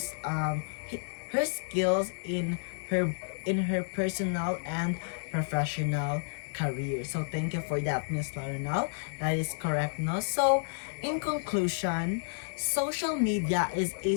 her skills in her personal and professional career. So thank you for that, Miss Larinal. That is correct, no? So in conclusion, social media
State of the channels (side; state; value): right; silent; digital silence